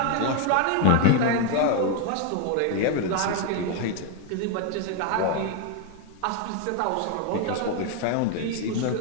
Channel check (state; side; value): different; both; correlation 0.01